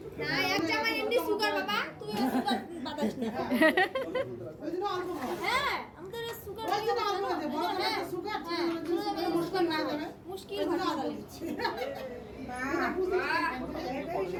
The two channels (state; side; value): identical; both; correlation 1.00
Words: না এক জামাই এমনি সুগার বাবা তুই সুগার বাতাস না ওই জন্য অল্প খাও। হ্যাঁ আমাদের সুগার ওই জন্য অল্প আছে, বড় করে একটা সুগার, ছোট করে একটা মুশকিল না যাবে। মুশকিল ওই জন্য ভালো অল্প লাগে দিচ্ছি। না,